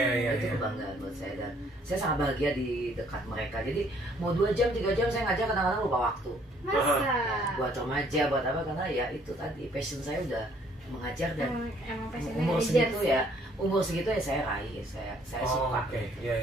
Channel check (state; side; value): normal; both; correlation 0.63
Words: Itu kebanggaan buat saya dan saya sangat bahagia di dekat mereka. Jadi mau 2 jam, 3 jam saya ngajar kadang-kadang lupa waktu. Masa? Buat remaja, buat apa, karena ya itu tadi passion saya udah mengajar dan umur segitu ya saya raih, saya suka.